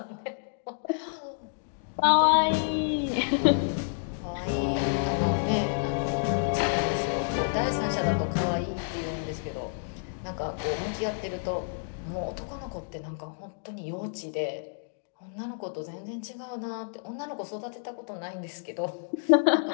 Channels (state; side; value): silent; right; digital silence